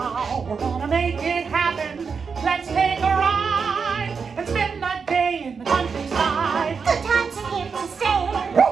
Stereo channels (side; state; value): left; quieter; 5.6 dB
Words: We're gonna make it happen. Let's take a ride and spend the day in the countryside. Good times are here to stay.